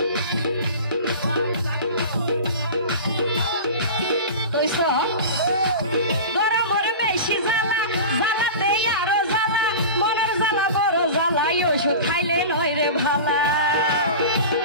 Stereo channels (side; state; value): both; inverted; correlation -0.32